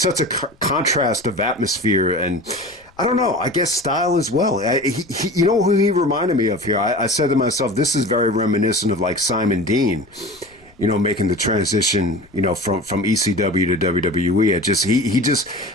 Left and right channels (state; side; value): noise; left; rumble, 30 dB below the sound